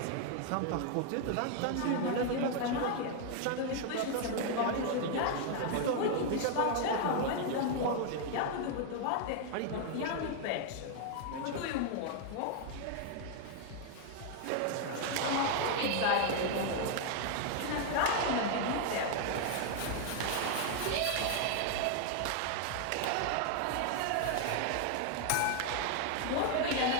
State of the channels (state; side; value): different; both; correlation 0.00